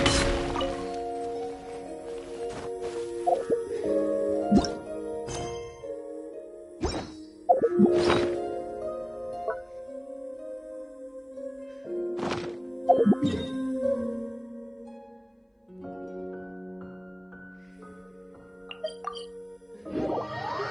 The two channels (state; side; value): identical; both; correlation 1.00